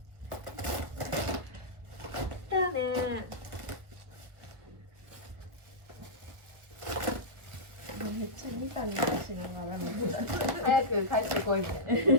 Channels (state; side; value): late; left; 1.7 ms